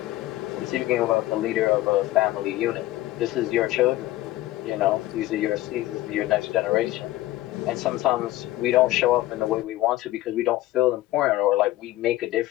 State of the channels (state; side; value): quieter; right; 16.5 dB